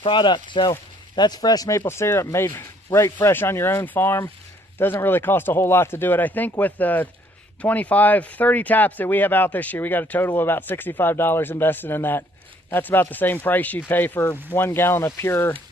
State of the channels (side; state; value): both; normal; correlation 0.63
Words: product. So that's fresh maple syrup made right fresh on your own farm. Doesn't really cost a whole lot to do it. I think with the 30 taps that we have out this year, we got a total of about $65 invested in that. That's about the same price you'd pay for 1 gallon of pure